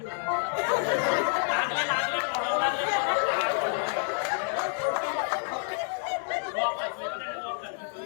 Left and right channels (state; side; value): silent; right; 56 dB below the other